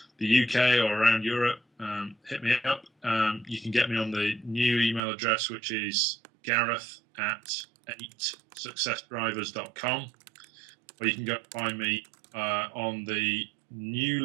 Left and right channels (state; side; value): drops out; left; at 5.0 s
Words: the UK or around Europe, hit me up. You can get me on the new email address, which is gareth@8successdrivers.com, or you can go find me on the